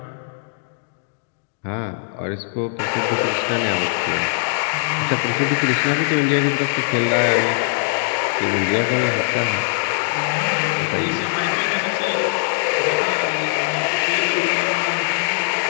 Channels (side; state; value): right; silent; digital silence